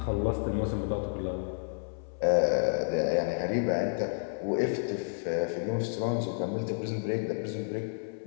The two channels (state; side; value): silent; right; 57 dB below the other